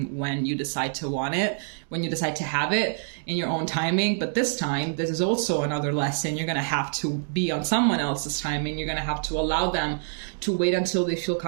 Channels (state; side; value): silent; left; digital silence